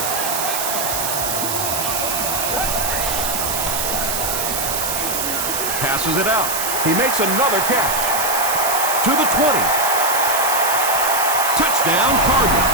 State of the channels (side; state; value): right; noise; hiss, 1 dB below the sound